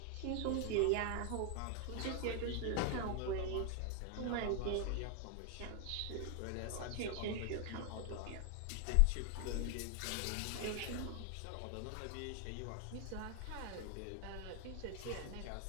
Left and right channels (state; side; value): different; both; correlation 0.00